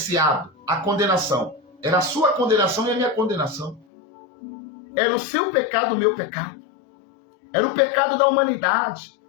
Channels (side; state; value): right; drops out; at 3.9 s